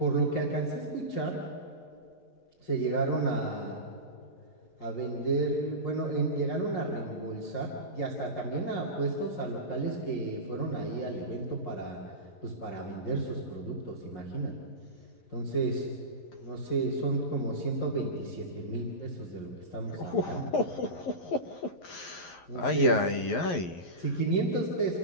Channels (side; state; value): right; late; 11 ms